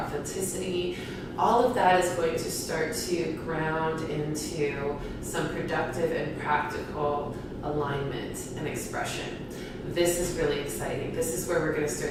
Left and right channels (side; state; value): both; identical; correlation 1.00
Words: authenticity. All of that is going to start to ground into some productive and practical alignment and expression. This is really exciting. This is where we're going to